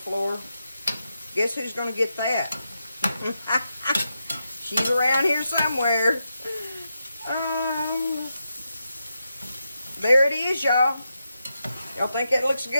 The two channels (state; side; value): inverted; both; correlation -0.86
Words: Guess who's going to get that? She's around here somewhere. There it is, y'all. Y'all think that looks